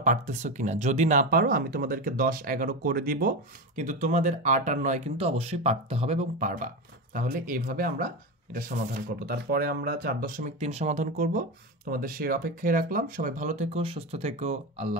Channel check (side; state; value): both; normal; correlation 0.18